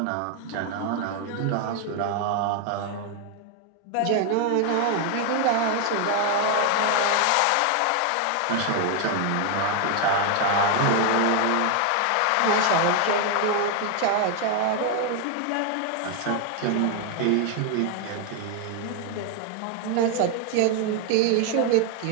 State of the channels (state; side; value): different; both; correlation 0.01